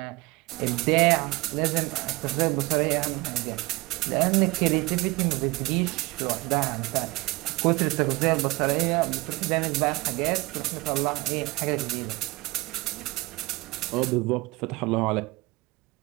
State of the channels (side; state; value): left; quieter; 22.5 dB